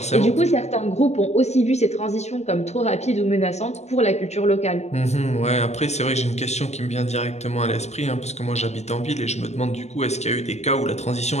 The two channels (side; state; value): right; late; 0.32 ms